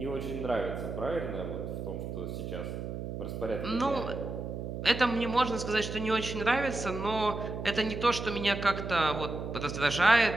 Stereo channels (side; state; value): right; noise; hum, 6 dB below the sound